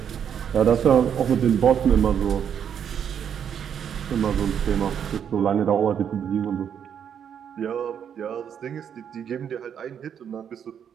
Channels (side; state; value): left; quieter; 8.4 dB